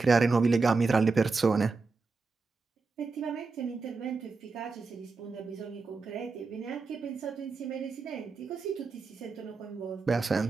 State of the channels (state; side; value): quieter; left; 4.2 dB